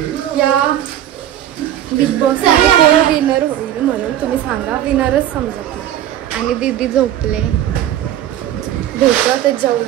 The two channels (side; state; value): left; quieter; 11.8 dB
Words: या बिग बॉस कोण विनर होईल म्हणून. तुम्ही सांगा. विनरच समजत नाही. आणि दीदी झोपले. भेटू ते